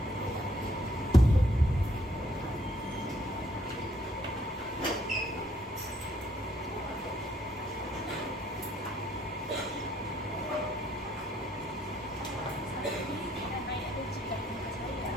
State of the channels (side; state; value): both; normal; correlation 0.68